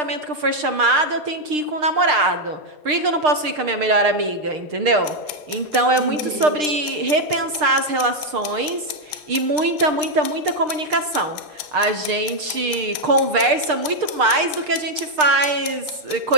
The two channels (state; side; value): late; left; 6.6 ms